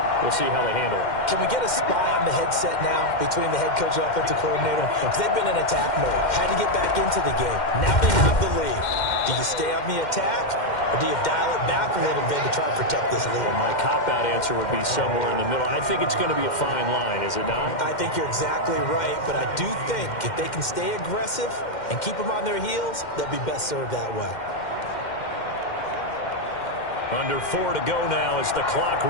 We'll see how they handle it. Can we get a spy on the headset now between the head coach and offensive coordinator? Because they've been in attack mode. Had to get back into the game. Now they have the lead. Do you stay on the attack, or do you dial it back a little bit to try and protect this lead? Well, my cop-out answer would be somewhere in the middle. I think it's going to be a fine line, is it not? I think you're exactly right, but I do think if they can stay aggressive and keep them on their heels, they'll be best served that way. Under 4 to go now as the clock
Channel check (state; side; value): late; right; 2.1 ms